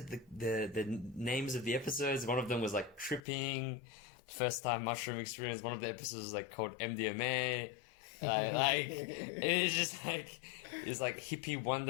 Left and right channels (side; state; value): right; drops out; at 3.2 s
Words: the names of the episodes. One of them was like tripping, first time mushroom experience. One of the episodes was like called MDMA. Like, it's just like, it's like hippie